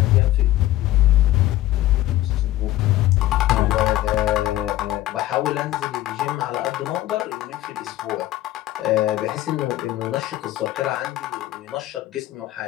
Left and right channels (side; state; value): right; quieter; 15.1 dB